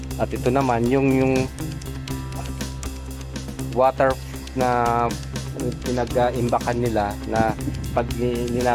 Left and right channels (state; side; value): identical; both; correlation 1.00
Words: At ito naman yung water na pinag-imbakan nila na pag